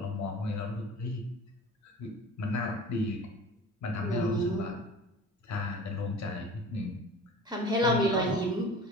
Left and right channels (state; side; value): normal; both; correlation 0.40